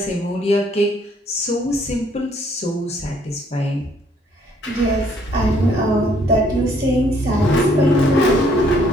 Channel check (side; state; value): both; normal; correlation 0.64